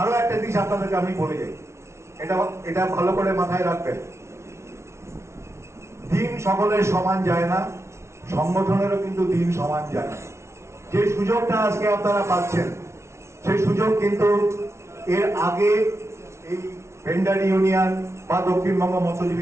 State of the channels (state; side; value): late; left; 0.13 ms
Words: একটা জিনিস আপনাদেরকে আমি বলে যাই, এটা এটা ভালো করে মাথায় রাখবেন, দিন সকলের সমান যায় না, সংগঠনেরও কিন্তু দিন সমান যায় না। যে সুযোগটা আজকে আপনারা পাচ্ছেন সেই সুযোগ কিন্তু এর আগে এই ভেন্ডার ইউনিয়ন বা দক্ষিণবঙ্গ